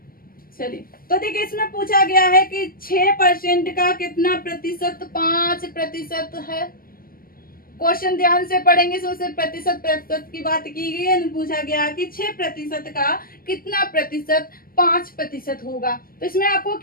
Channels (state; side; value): late; right; 0.42 ms